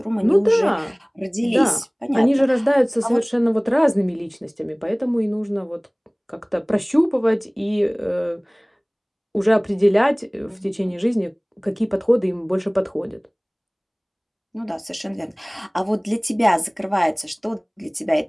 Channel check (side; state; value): both; identical; correlation 1.00